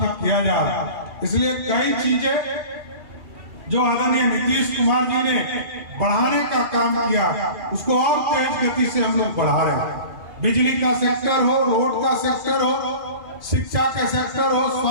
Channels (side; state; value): left; late; 2.5 ms